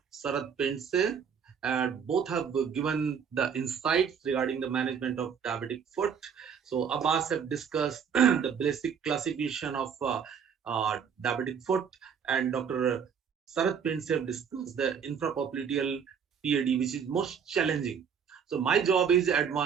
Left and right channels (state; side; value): quieter; left; 7.1 dB